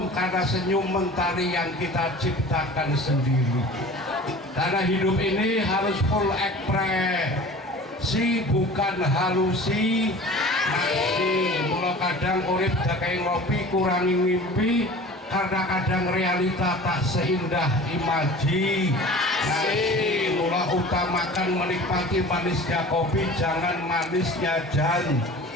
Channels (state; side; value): normal; both; correlation 0.41